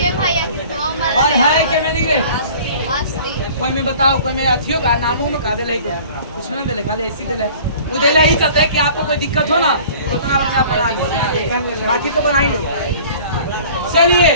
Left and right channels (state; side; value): inverted; both; correlation -0.47